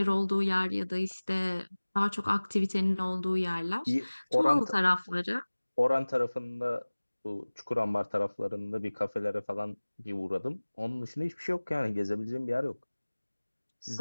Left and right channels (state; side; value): inverted; both; correlation -1.00